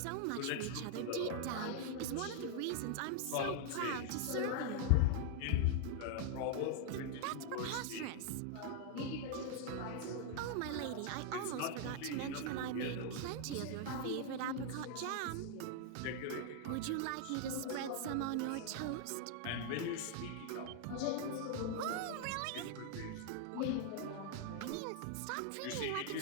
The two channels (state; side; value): different; both; correlation 0.00